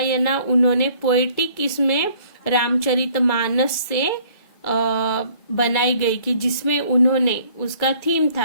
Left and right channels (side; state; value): right; late; 2.3 ms